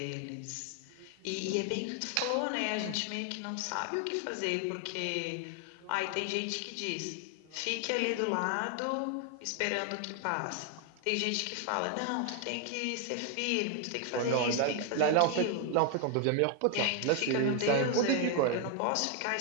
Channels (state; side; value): different; both; correlation 0.01